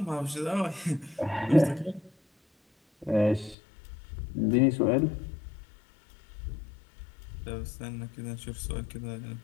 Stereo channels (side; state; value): right; drops out; at 3.6 s